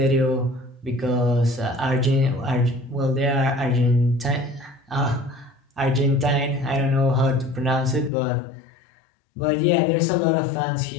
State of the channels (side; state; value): right; drops out; at 8.1 s